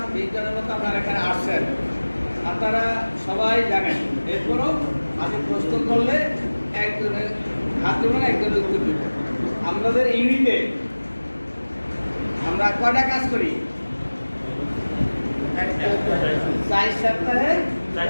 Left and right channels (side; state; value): both; inverted; correlation -1.00